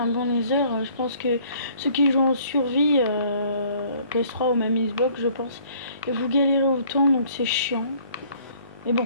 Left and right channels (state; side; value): inverted; both; correlation -0.58